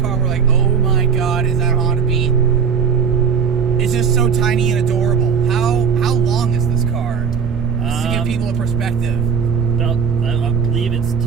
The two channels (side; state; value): left; quieter; 6.3 dB